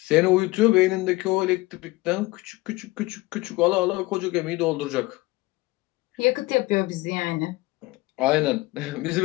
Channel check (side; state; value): right; quieter; 21.0 dB